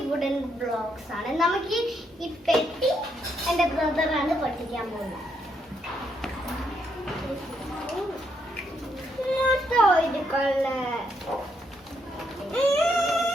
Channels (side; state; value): both; normal; correlation 0.76